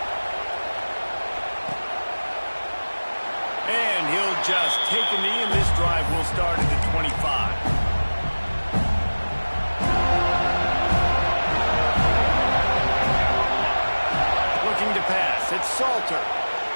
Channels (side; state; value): both; inverted; correlation -1.00